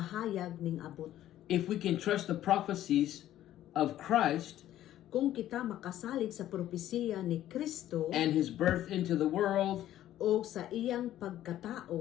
ning abot. If we can trust the prophecies of Christ Kung kita makasalig sa propesiya ni Kristo and His birth into the world o sa iyang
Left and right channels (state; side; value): quieter; right; 12.8 dB